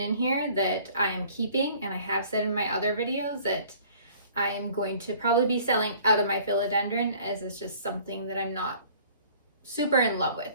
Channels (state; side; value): inverted; both; correlation -0.52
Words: here that I am keeping, and I have said in my other videos that I am going to probably be selling out of my philodendron, as it's just something that I'm not super in love with.